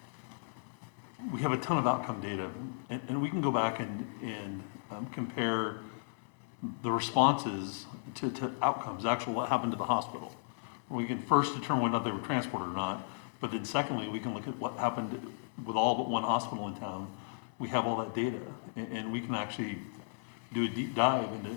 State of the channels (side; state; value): right; silent; 55 dB below the other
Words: we have a ton of outcome data, and we can go back and compare the responses to outcomes, actual what happened to the hospital. We can first determine whether they were transported or not, but then secondly, we can look at what happened with all but one hospital in town. We have all that data, and we can actually do a deep dive